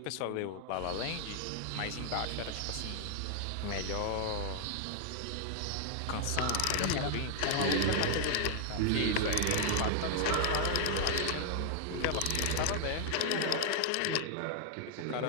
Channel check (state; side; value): different; both; correlation 0.00